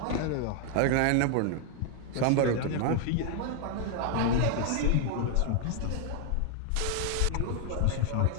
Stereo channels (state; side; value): different; both; correlation 0.00